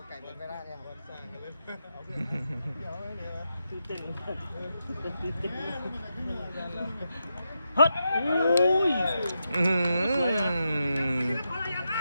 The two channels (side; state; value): both; inverted; correlation -0.86